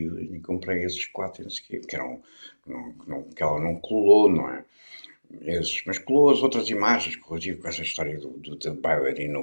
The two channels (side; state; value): both; inverted; correlation -1.00